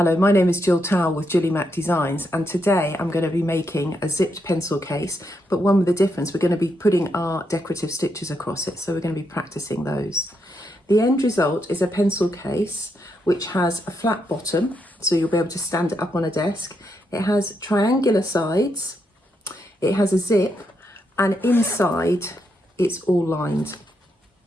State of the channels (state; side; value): normal; both; correlation 0.80